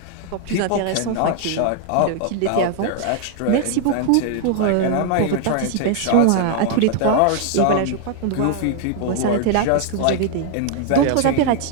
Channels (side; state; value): both; different; correlation 0.00